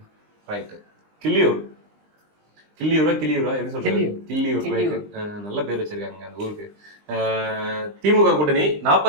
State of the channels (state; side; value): late; left; 20 ms